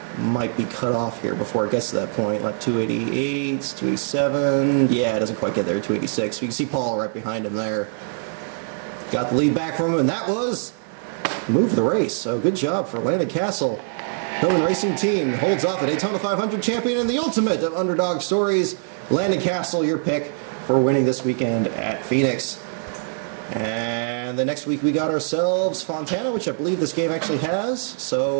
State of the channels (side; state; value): left; silent; 62 dB below the other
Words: might be cut off here before it gets to that point. Lap 288, 287. Yeah, it doesn't quite get there, 286. We can see Paul right behind him there. Got the lead back from him, and that was the move of the race. So good job for Landon Castle. Hillman Racing Team holds off the Daytona 500 champion and the ultimate of underdog stories. Landon Castle, your pick for winning this weekend at Phoenix. And the next week we got ourselves Fontana, which I believe this game actually has.